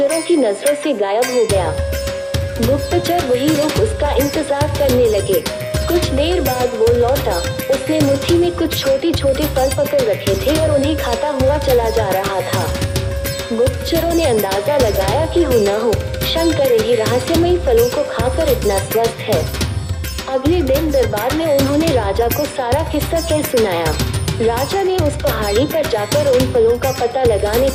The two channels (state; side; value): identical; both; correlation 1.00